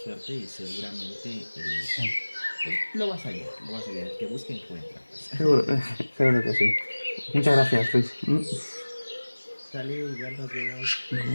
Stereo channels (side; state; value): both; inverted; correlation -1.00